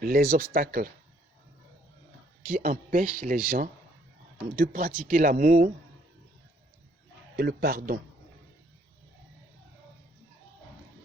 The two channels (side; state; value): both; normal; correlation 0.65